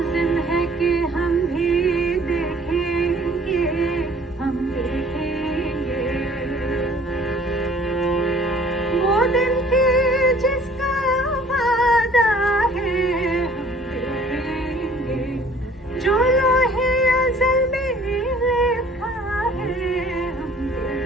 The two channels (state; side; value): normal; both; correlation 0.53